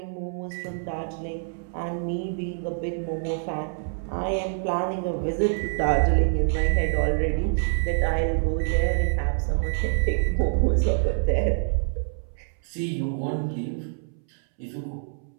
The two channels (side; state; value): left; silent; 61 dB below the other